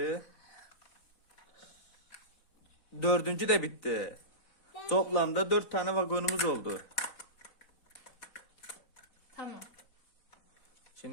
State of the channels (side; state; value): right; late; 4.1 ms